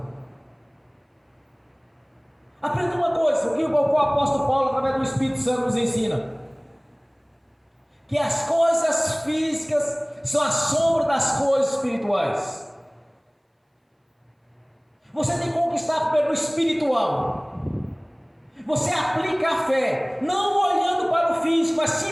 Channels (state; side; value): identical; both; correlation 1.00